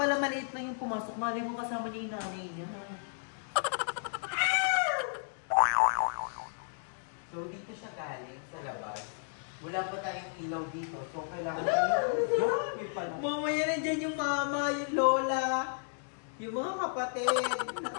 maliit lang yung pumasok. Mali mo kasama niya yung nanay niya. So, dito siya galing sa labas. Wala pa tayong ilaw dito. So, kailangan Mamaya nandiyan yung mama, yung lola, yung mga kapatid.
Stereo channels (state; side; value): silent; right; digital silence